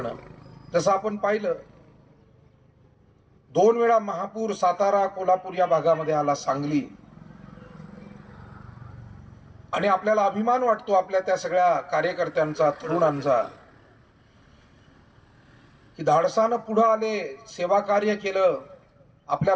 जसं आपण पाहिलं 2 वेळा महापूर सातारा कोल्हापूर या भागामध्ये आला, सांगली. आणि आपल्याला अभिमान वाटतो आपल्या त्या सगळ्या कार्यकर्त्यांचा, तरुणांचा, की धाडसानं पुढे आले, सेवा कार्य केलं, आपल्या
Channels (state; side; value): identical; both; correlation 1.00